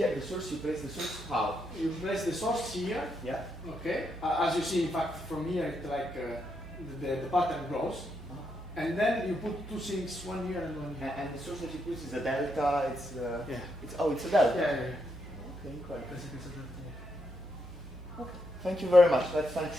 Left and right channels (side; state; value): both; normal; correlation 0.80